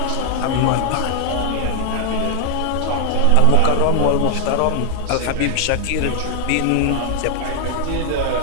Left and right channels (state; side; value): different; both; correlation 0.00